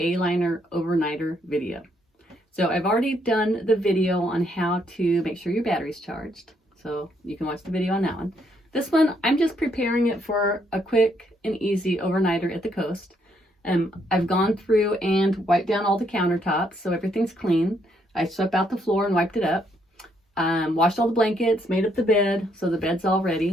overnighter video. So I've already done the video on how to make sure your battery's charged. So you can watch the video on that one. This one, I'm just preparing it for a quick and easy overnighter at the coast. I've gone through and wiped down all the countertops so everything's clean. I swept out the floor and wiped it up. Washed all the blankets, made up the bed, so the bed's all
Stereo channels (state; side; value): normal; both; correlation 0.72